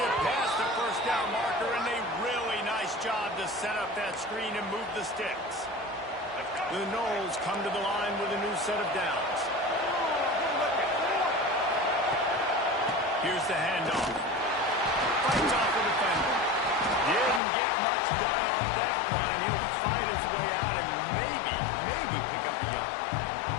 it past the first down marker, and a really nice job to set up that screen and move the sticks. The Noles come to the line with a new set of downs. Here's the handoff. Fights off the defender. Didn't get much done on that one. He'll fight his way out and maybe pick up a yard.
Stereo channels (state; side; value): drops out; right; at 17.4 s